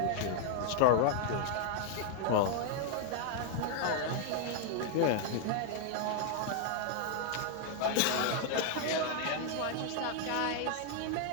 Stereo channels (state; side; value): different; both; correlation 0.00